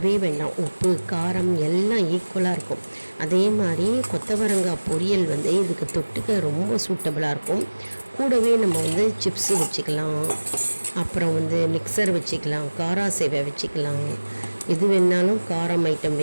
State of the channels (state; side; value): inverted; both; correlation -1.00